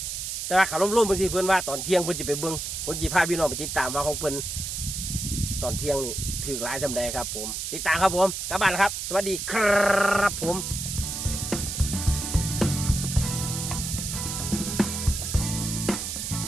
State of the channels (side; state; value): right; noise; hiss, 4 dB below the sound